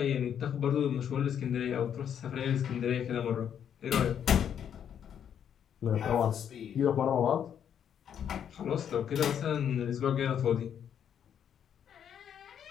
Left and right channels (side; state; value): right; quieter; 8.8 dB